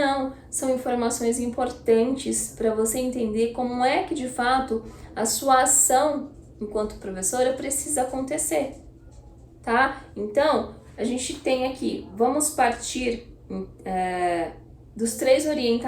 são informações importantes para você entender como é que de fato a sua ação enquanto professora precisa acontecer, tá? Então, a gente tem aqui, vamos partir dos 3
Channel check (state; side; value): identical; both; correlation 1.00